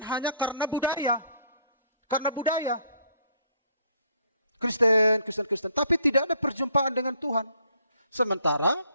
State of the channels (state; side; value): inverted; both; correlation -0.64